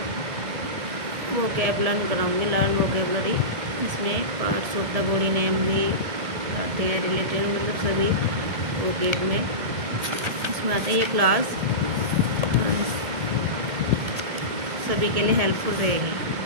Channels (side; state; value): left; late; 1.7 ms